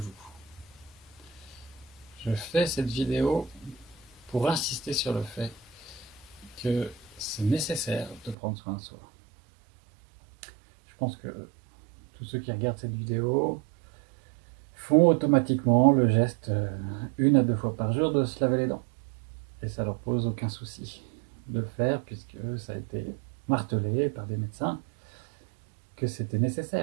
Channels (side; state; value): left; drops out; at 8.3 s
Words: Je fais cette vidéo pour insister sur le fait que c'est nécessaire de prendre soin de soi. Je pense que tous ceux qui regardent cette vidéo font automatiquement le geste 1 à 2 fois par jour de se laver les dents. Et ça leur pose aucun souci de le faire puisque ça a été martelé par des médecins que c'était